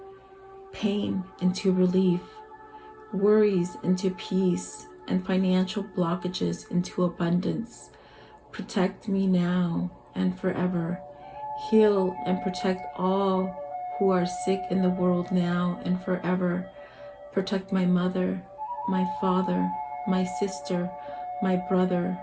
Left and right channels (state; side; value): identical; both; correlation 1.00